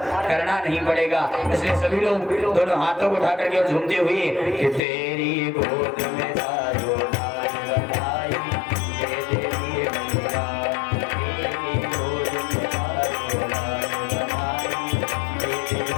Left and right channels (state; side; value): drops out; right; at 4.8 s